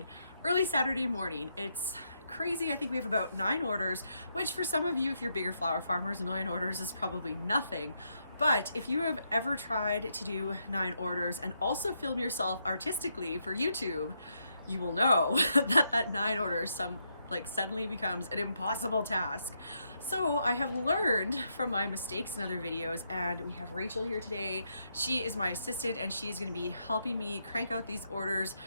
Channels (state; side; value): inverted; both; correlation -0.80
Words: early Saturday morning. It's crazy. I think we have about 9 orders, which for some of you, if you're bigger flower farmers, 9 orders is probably nothing. But if you have ever tried to do 9 orders and also film yourself artistically for YouTube, you will know that 9 orders like suddenly becomes an impossible task. So I have learned from my mistakes in other videos, and we have Rachel here today. She is my assistant and she's going to be helping me crank out these orders,